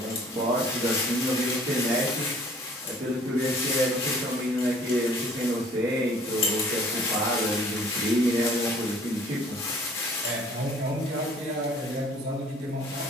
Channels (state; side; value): normal; both; correlation 0.54